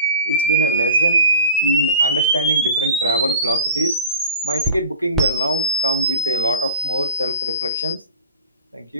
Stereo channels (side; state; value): both; inverted; correlation -0.41